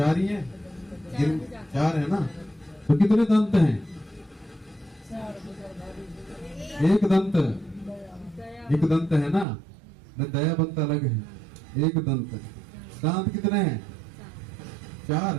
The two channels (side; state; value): left; drops out; at 9.5 s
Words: ही है, 4 है ना। तो कितने दंत हैं? एक दंत है ना, न दया बंत अलग है, एक दंत। दांत कितने हैं? 4